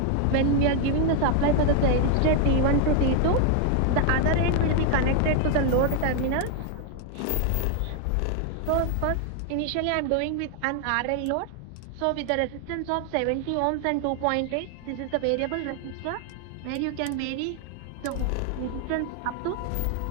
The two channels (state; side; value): different; both; correlation 0.00